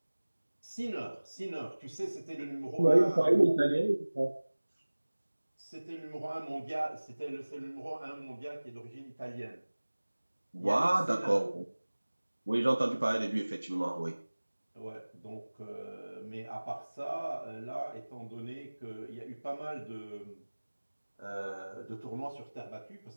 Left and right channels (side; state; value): both; inverted; correlation -1.00